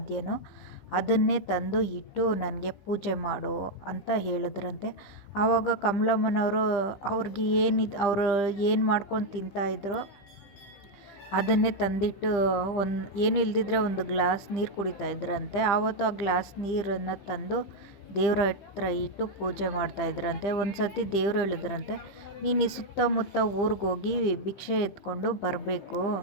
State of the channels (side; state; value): right; late; 15 ms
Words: ಅದನ್ನೇ ತಂದು ಇಟ್ಟು ನನಗೆ ಪೂಜೆ ಮಾಡು ಅಂತ ಹೇಳಿದ್ರಂತೆ. ಆವಾಗ ಕಮಲಮ್ಮನವರು ಅವ್ರಿಗೆ ಅವರು ಏನು ಮಾಡ್ಕೊಂಡು ತಿಂತಾಯಿದ್ರು ಅದನ್ನೇ ತಂದಿಟ್ಟು ಏನು ಇಲ್ದಿದ್ರೆ ಒಂದು ಗ್ಲಾಸ್ ನೀರು ಕುಡಿತಾ ಇದ್ರಂತೆ. ಆವತ್ತು ಆ ಗ್ಲಾಸ್ ನೀರನ್ನು ತಂದು ದೇವ್ರ ಹತ್ರ ಇಟ್ಟು ಪೂಜೆ ಮಾಡ್ತಾಯಿದ್ರಂತೆ. ಒಂದು ಸತಿ ದೇವರು ಹೇಳಿದ್ರಂತೆ, ನೀನು ಈ ಸುತ್ತಮುತ್ತ ಊರಿಗೋಗಿ ಭಿಕ್ಷೆ ಎತ್ಕೊಂಡು ಬರಬೇಕು,